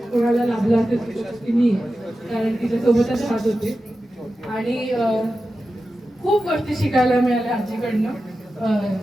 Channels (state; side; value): normal; both; correlation 0.92